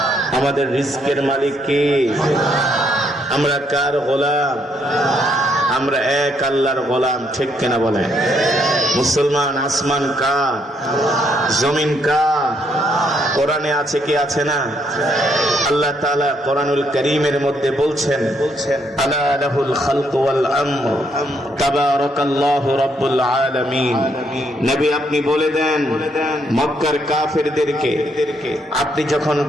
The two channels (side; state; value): both; normal; correlation 0.72